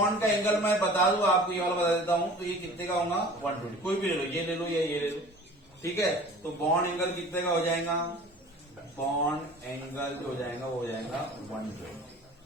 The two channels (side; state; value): both; normal; correlation 0.43